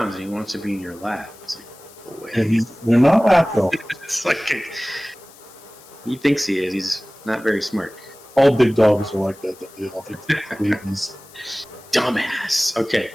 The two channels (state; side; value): noise; left; hiss, 23 dB below the sound